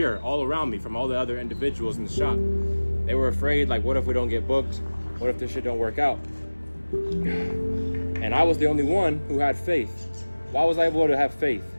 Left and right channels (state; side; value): inverted; both; correlation -1.00